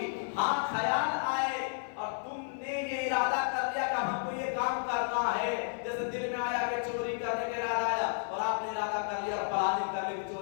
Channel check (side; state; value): right; silent; digital silence